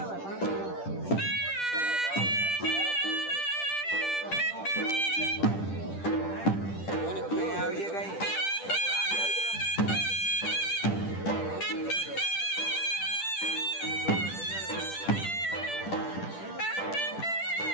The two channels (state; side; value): late; right; 10 ms